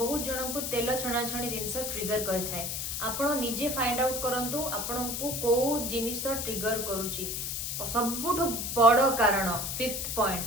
जन को तेल छणा छणी जिनस ट्रिगर करिथाय। आपण निजे फाइंड आउट करंतु आपण को को जिनिस ट्रिगर करूची। सबुठु बड़ कारण फिफ्थ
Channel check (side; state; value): left; noise; hiss, 3 dB below the sound